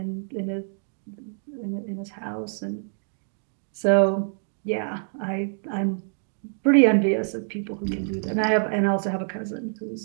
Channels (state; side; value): silent; left; digital silence